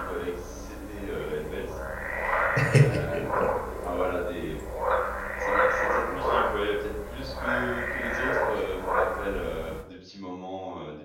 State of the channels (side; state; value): both; identical; correlation 1.00